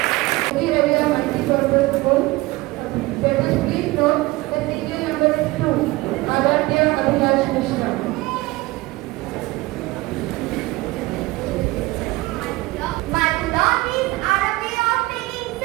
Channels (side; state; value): left; quieter; 20.7 dB